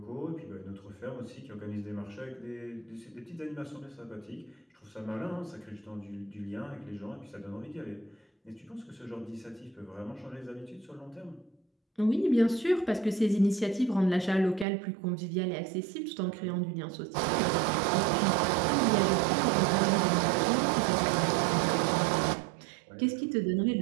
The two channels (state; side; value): drops out; left; at 14.7 s